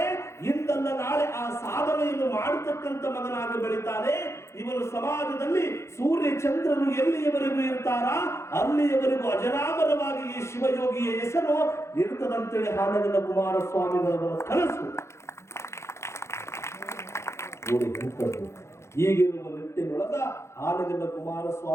ಇಂದಲ್ಲ ನಾಳೆ ಆ ಸಾಧನೆಯನ್ನು ಮಾಡತಕ್ಕಂತ ಮಗನಾಗಿ ಬೆಳಿತಾನೆ. ಇವನು ಸಮಾಜದಲ್ಲಿ ಸೂರ್ಯ ಚಂದ್ರನು ಎಲ್ಲಿಯವರೆಗೂ ಇರ್ತಾರ ಅಲ್ಲಿಯವರೆಗೂ ಅಜರಾಮರವಾಗಿ ಈ ಶಿವಯೋಗಿಯ ಹೆಸರು ಇರ್ತದಂತೇಳಿ ಹಾನಗಲ್ಲ ಕುಮಾರಸ್ವಾಮಿಗಳವರ ಕನಸು. ಈಗಿರುವ ನಿಟ್ಟಿನೊಳಗ ಆನಗಲ್ಲ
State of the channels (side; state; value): right; late; 0.13 ms